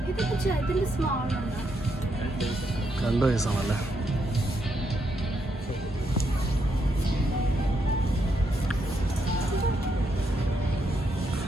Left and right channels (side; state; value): both; normal; correlation 0.78